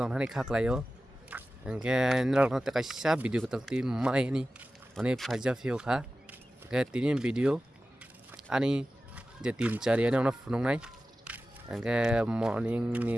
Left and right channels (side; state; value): both; normal; correlation 0.95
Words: mana khak layo. Engke nilai nanti kasih video ketelti mai ni, mana fajar view kah? Engke tini video, ani jadi cari ani orang phone nai. Engke morning